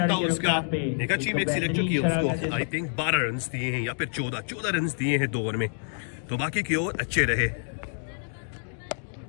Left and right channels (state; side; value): silent; right; digital silence